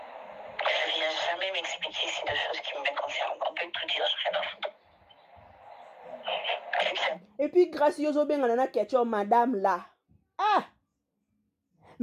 Je ne viens jamais m'expliquer si de choses qui me concernent. On peut tout dire, j'ai rien à foutre. Et puis, grâce à bien on a question madame là.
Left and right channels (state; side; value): identical; both; correlation 1.00